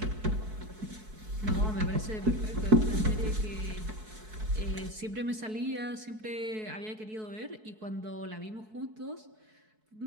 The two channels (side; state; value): left; late; 4.6 ms